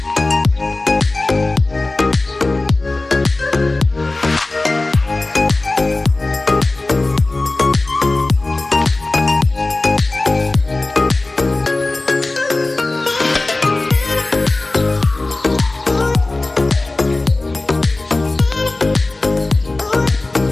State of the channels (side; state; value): right; quieter; 3.1 dB